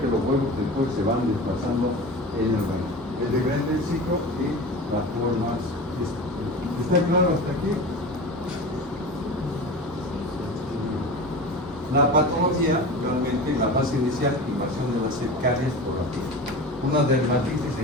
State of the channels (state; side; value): normal; both; correlation 0.32